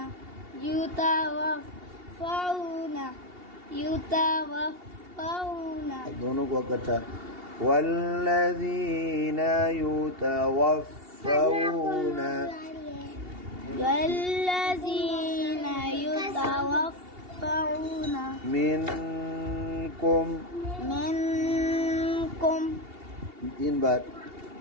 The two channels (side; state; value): left; late; 2.8 ms